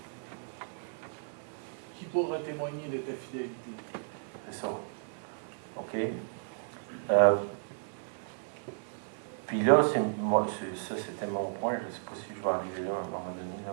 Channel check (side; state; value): left; silent; digital silence